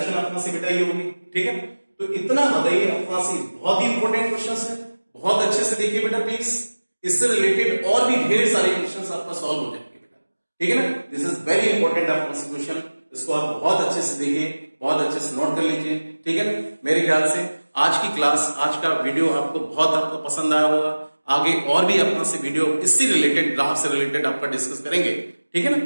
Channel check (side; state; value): both; inverted; correlation -1.00